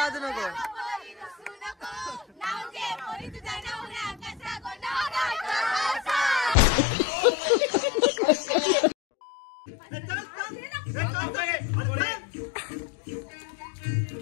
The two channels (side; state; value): right; drops out; at 6.6 s